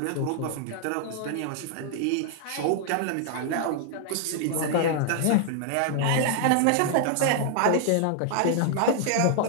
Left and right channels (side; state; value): both; different; correlation 0.00